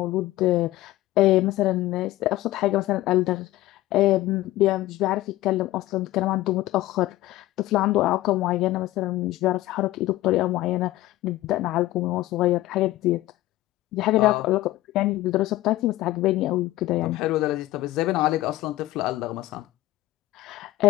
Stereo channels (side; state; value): right; quieter; 16.5 dB